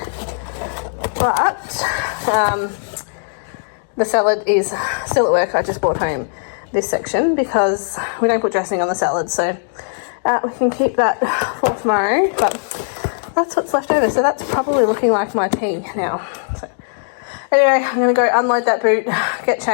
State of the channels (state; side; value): silent; right; digital silence